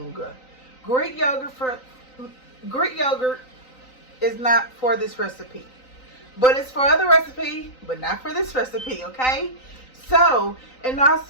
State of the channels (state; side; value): late; right; 3.9 ms